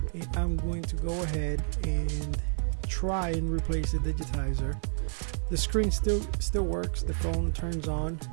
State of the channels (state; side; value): silent; left; digital silence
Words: and I'm going to go ahead and try and replace the digitizer. The screen still works, the phone turns on,